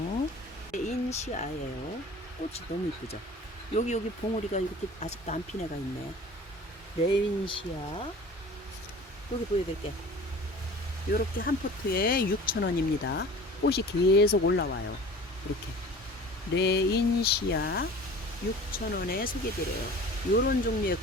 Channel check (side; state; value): both; normal; correlation 0.43